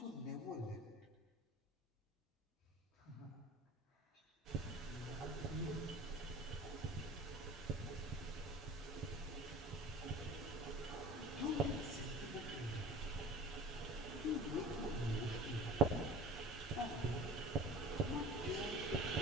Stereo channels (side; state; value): both; normal; correlation 0.40